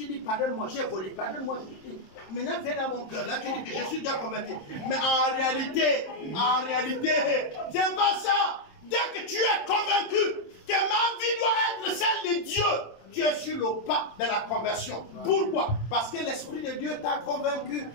dis, pardonne-moi, j'ai volé, pardonne-moi. Maintenant, viens dans mon cœur. Là, tu dis que je suis déjà converti. Mais en réalité, c'est pas ça. Dès que tu es convaincu que ma vie doit être celle de Dieu, tu es sur le pas de la conversion. Pourquoi? Parce que l'Esprit de Dieu t'a convaincu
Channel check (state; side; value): late; right; 27 ms